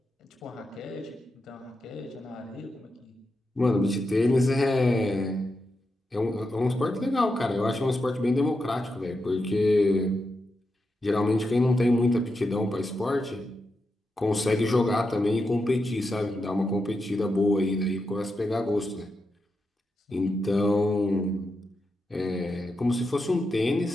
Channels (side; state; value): both; normal; correlation 0.87